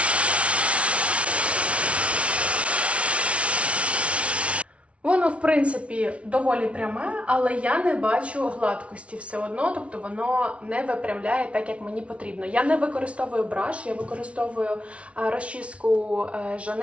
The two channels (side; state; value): left; late; 0.062 ms